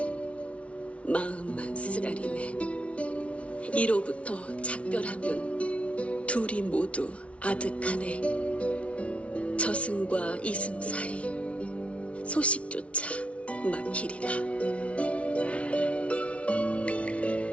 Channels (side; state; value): right; late; 0.062 ms